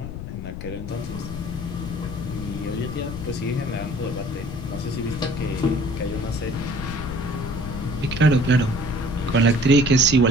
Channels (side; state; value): left; noise; rumble, 8 dB below the sound